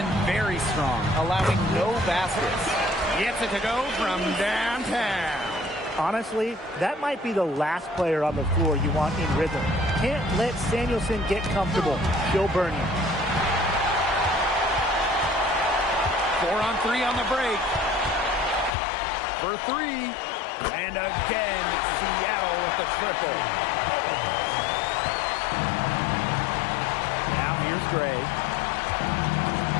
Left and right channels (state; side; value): drops out; right; at 18.7 s